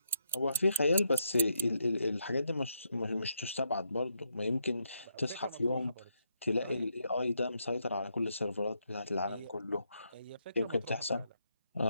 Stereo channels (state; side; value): inverted; both; correlation -0.80